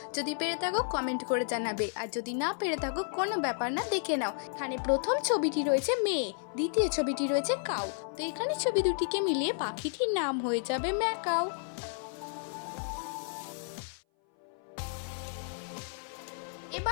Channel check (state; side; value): silent; right; 56 dB below the other